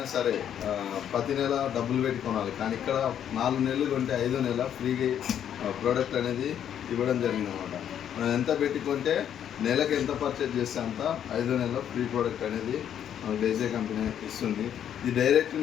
సరే ప్రతి నెల డబ్బులు పెట్టి కొనాలి, కానీ ఇక్కడ 4 నెలలు కొంటే 5వ నెల ఫ్రీగా ప్రోడక్ట్ అనేది ఇవ్వడం జరిగింది అనమాట. మనం ఎంత పెట్టి కొంటే నెలకు ఎంత పర్చేజ్ చేస్తే అంత 5వ నెల ఫ్రీ ప్రోడక్ట్ అనేది మనకు డేజే కంపెనీ ఇస్తుంది. ఇది డైరెక్ట్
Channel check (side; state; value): right; quieter; 9.6 dB